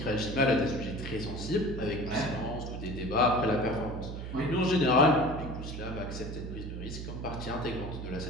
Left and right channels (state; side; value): noise; right; hum, 7 dB below the sound